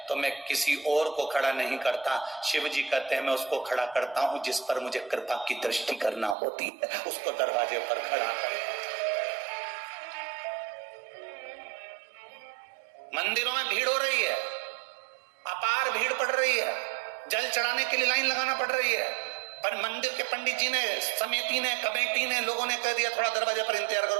तो मैं किसी और को खड़ा नहीं करता, शिव जी कहते हैं मैं उसको खड़ा करता हूं जिस पर मुझे कृपा की दृष्टि करना होती है, उसको दरवाजे पर खड़ा कर। मंदिरों में भीड़ हो रही है, अपार भीड़ पड़ रही है, जल चढ़ाने के लिए लाइन लगाना पड़ रही है, पर मंदिर के पंडित जी ने, समिति ने, कमेटी ने, लोगों ने कह दिया थोड़ा दरवाजे पर इंतजार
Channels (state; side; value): drops out; left; at 6.4 s